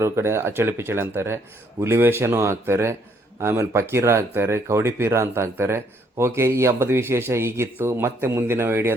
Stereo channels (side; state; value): both; normal; correlation 0.68